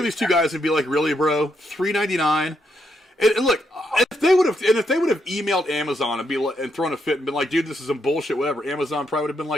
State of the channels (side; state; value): both; normal; correlation 0.79